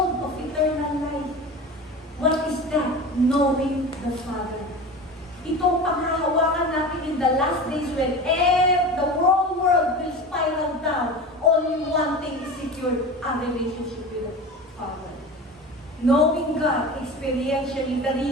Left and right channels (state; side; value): normal; both; correlation 0.31